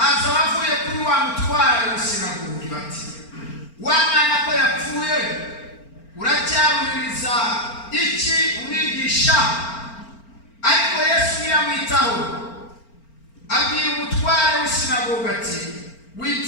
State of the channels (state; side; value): late; right; 4.4 ms